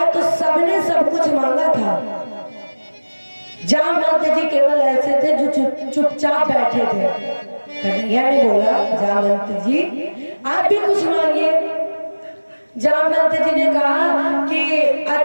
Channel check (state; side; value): inverted; both; correlation -1.00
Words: तो सबने सब कुछ मांगा था। जामवंत जी केवल ऐसे थे जो चुपचाप बैठे थे। कन्हैया ने बोला जामवंत जी आप भी कुछ मांगिए। जामवंत जी ने कहा कि